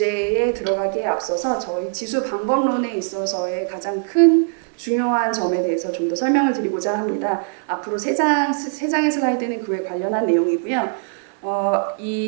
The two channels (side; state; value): left; silent; digital silence